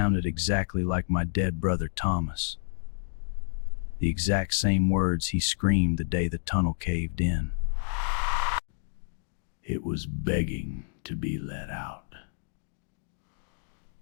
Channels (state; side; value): silent; right; digital silence